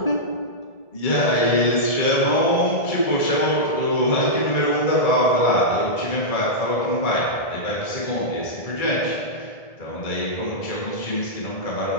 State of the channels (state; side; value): late; right; 1.7 ms